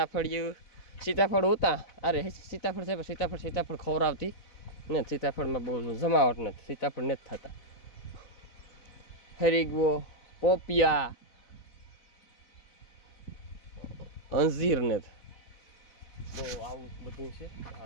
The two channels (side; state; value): right; late; 4.0 ms